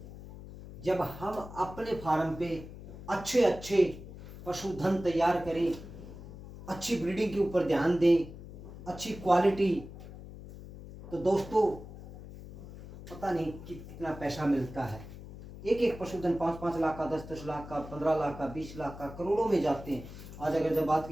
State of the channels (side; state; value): left; noise; hum, 14 dB below the sound